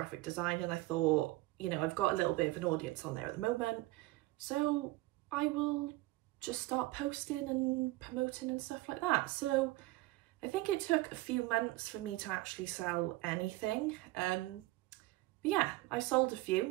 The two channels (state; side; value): quieter; left; 19.7 dB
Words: design and I thought you know, I've got a little bit of an audience on there at the moment, so I will just start posting and promoting and stuff like that. So I think it took a few months for me to actually sell anything. But yeah, I sold a